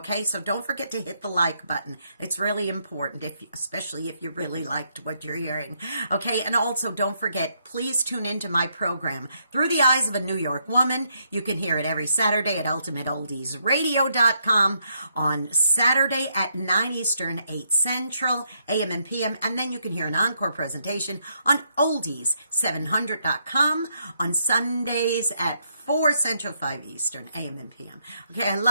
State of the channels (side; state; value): both; inverted; correlation -0.75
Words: So don't forget to hit the like button. It's really important, especially if you really liked what you're hearing, okay? And also don't forget, please tune into my program, Through the Eyes of a New York Woman. You can hear it every Saturday at ultimateoldiesradio.com on Saturday at 9 Eastern, 8 Central, AM and PM, and then you can hear an encore presentation on oldies700.com on Sundays at 4 Central, 5 Eastern, AM and PM. Okay, I